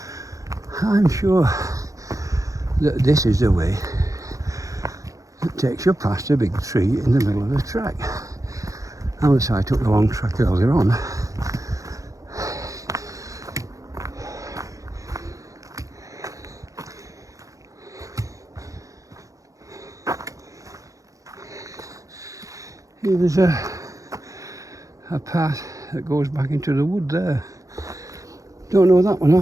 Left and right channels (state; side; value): late; left; 0.16 ms